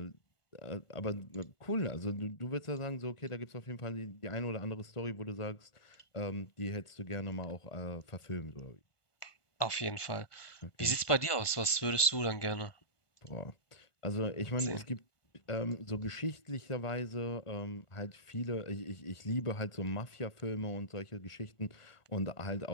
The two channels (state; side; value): late; right; 1.4 ms